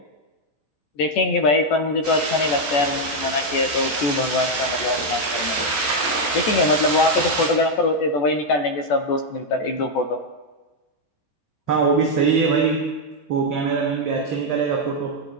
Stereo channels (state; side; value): late; right; 14 ms